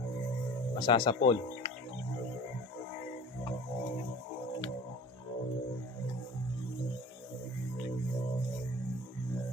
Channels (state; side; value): normal; both; correlation 0.40